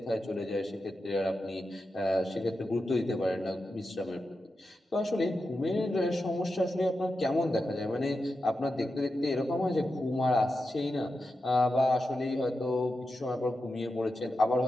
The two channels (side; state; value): both; normal; correlation 0.90